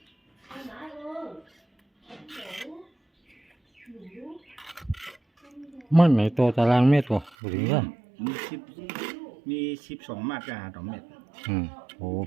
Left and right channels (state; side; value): drops out; left; at 7.4 s